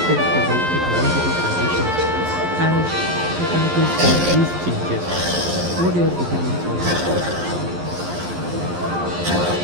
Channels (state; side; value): late; left; 11 ms